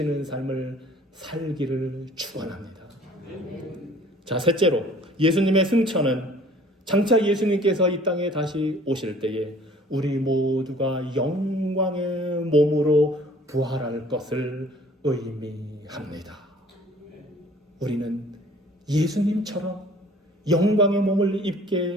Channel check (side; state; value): both; normal; correlation 0.53